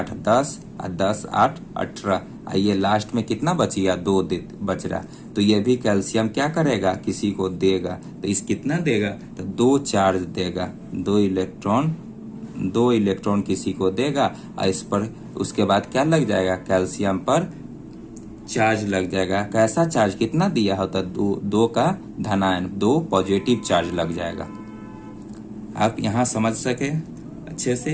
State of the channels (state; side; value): identical; both; correlation 1.00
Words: 10, 10 8 18, ये लास्ट में कितना बचिया? 2 बच रहा। तो ये भी कैल्शियम क्या करेगा? किसी को देगा। तो इस कितना देगा? तो 2 चार्ज देगा, 2 इलेक्ट्रॉन किसी को देगा, और इस पर उसके बाद क्या लग जाएगा? कैल्शियम पर चार्ज लग जाएगा। कैसा चार्ज? कितना दिया होता? 2 का धनायन, 2 पॉजिटिव चार्ज लग जाएगा। आप यहाँ समझ सके अच्छे